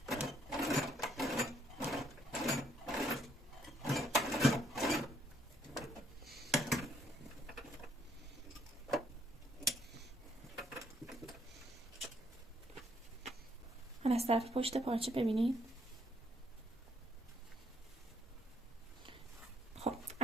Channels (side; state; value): both; normal; correlation 0.68